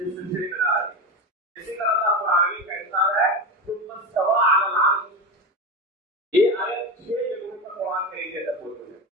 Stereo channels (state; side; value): normal; both; correlation 0.20